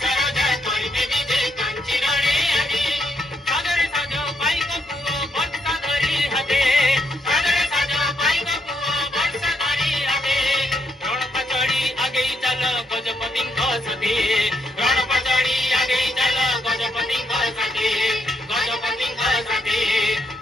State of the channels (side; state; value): both; normal; correlation 0.77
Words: राजा करिबे विजय कांची रणि आजी सागरे साज पाइक पुओ वर्षा धरी हाते सागरे साज पाइक पुओ वर्षा धरी हाते रण पचड़ी आगे चल गजपतिंक सती रण पचड़ी आगे चल गजपतिंक सती